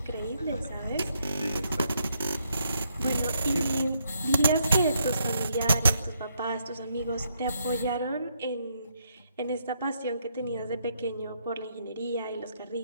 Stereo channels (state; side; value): inverted; both; correlation -0.76